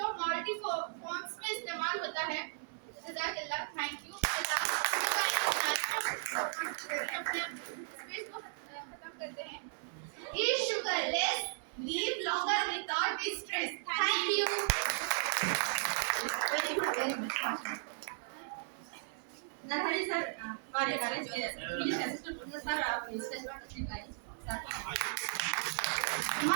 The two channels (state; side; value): silent; left; 54 dB below the other